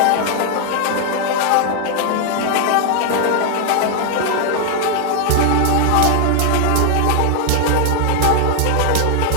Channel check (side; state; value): both; different; correlation 0.00